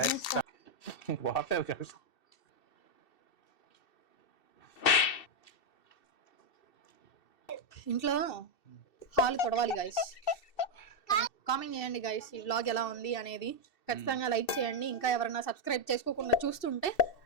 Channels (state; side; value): late; right; 2.7 ms